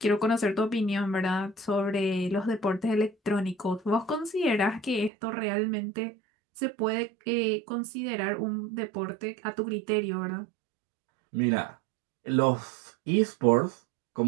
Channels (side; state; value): left; drops out; at 5.1 s